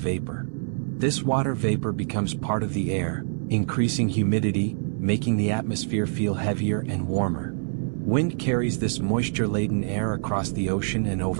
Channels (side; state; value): left; silent; digital silence